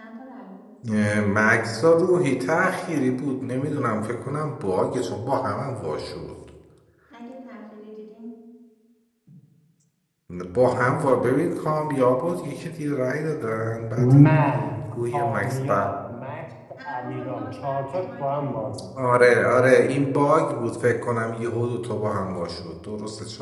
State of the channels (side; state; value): both; identical; correlation 1.00